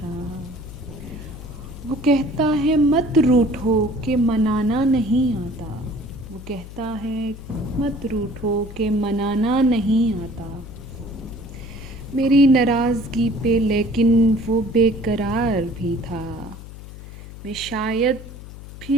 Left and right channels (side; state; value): left; noise; hum, 14 dB below the sound